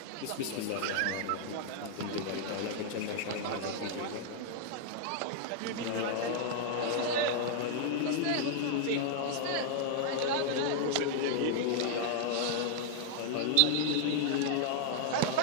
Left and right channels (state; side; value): different; both; correlation -0.01